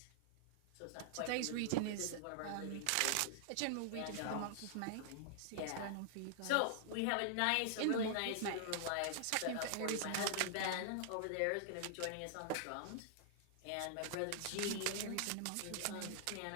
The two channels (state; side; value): different; both; correlation -0.01